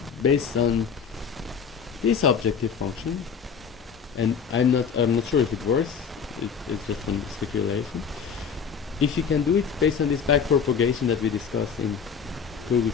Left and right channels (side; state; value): right; quieter; 6.5 dB